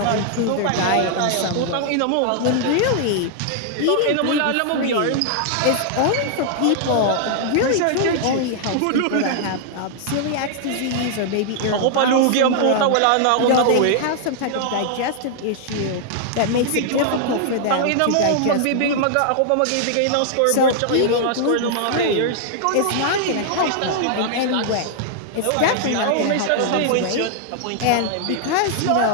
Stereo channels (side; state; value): both; different; correlation -0.01